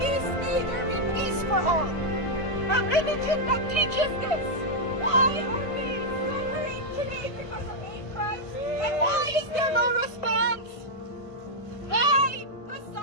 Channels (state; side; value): late; right; 1.5 ms